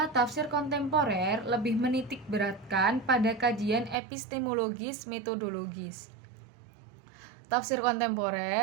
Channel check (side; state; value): left; drops out; at 4.0 s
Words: tafsir kontemporer lebih menitik beratkan pada kajian epistemologis metodologis. Tafsir